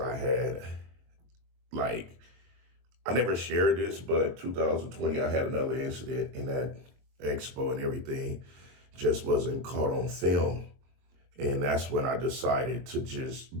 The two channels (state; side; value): late; left; 22 ms